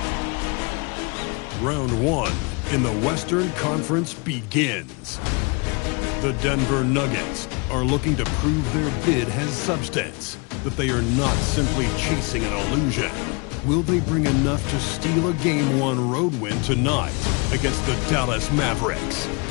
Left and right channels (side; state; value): right; quieter; 31.0 dB